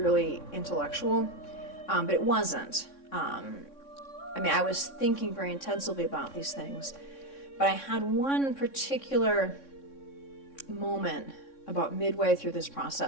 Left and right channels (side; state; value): right; late; 3.6 ms